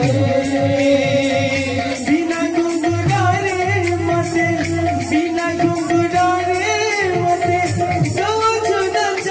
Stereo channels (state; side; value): identical; both; correlation 1.00